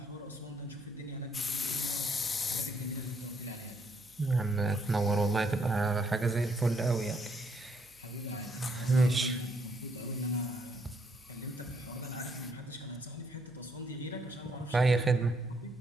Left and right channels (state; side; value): noise; right; hum, 29 dB below the sound